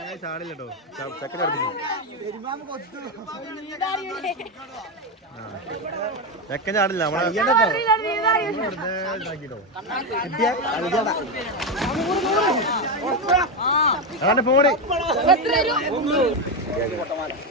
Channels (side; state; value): both; normal; correlation 0.10